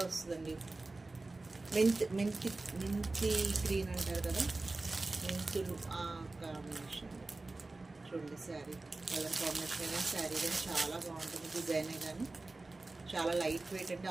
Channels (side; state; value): left; quieter; 3.2 dB